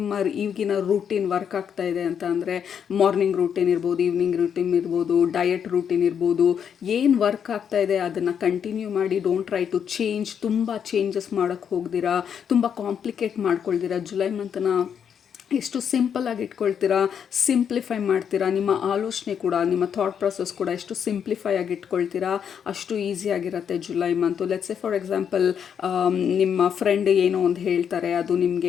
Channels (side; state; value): right; quieter; 7.9 dB